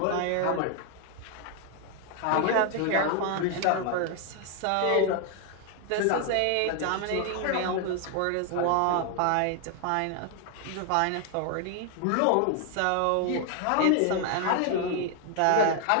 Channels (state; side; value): different; both; correlation 0.00